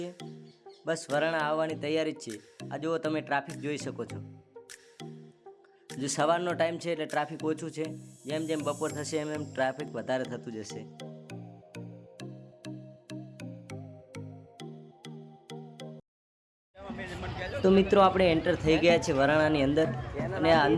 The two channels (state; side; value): identical; both; correlation 1.00